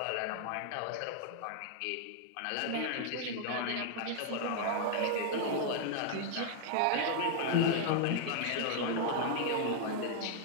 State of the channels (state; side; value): different; both; correlation 0.00